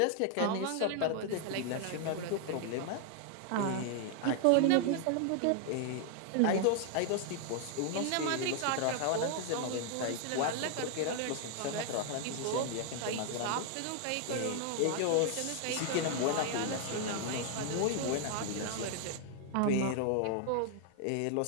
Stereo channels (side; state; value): both; different; correlation 0.00